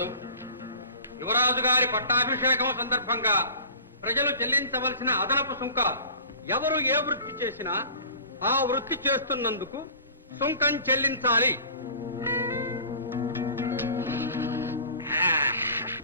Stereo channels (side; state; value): both; inverted; correlation -0.42